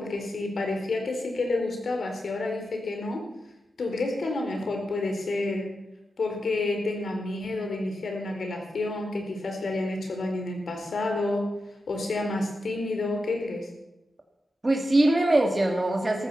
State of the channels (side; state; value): both; normal; correlation 0.89